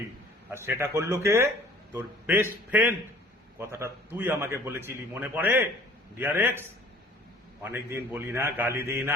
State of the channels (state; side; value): normal; both; correlation 0.51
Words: আর সেটা করলো কে? তোর বেস্ট ফ্রেন্ড। কথাটা তুই আমাকে বলেছিলি, মনে পড়ে ডিয়ার এক্স? অনেকদিন বলি না, গালি দিই